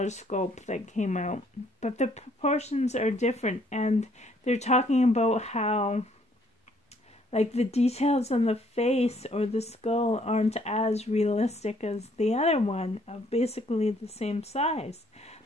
sculpt that came out, but the proportions are different, and they're talking about how, like, the details on the face or the skull aren't as realistic as the other one, of basically the same size.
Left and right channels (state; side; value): normal; both; correlation 0.65